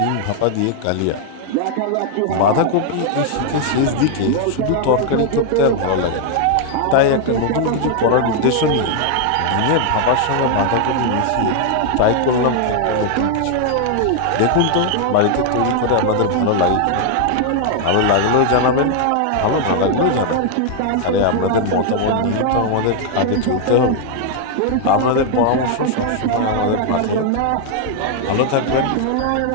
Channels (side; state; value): both; different; correlation 0.00